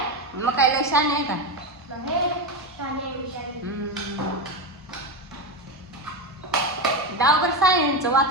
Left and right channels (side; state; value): both; normal; correlation 0.15